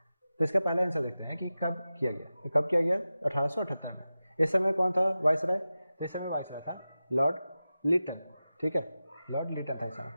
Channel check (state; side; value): inverted; both; correlation -0.94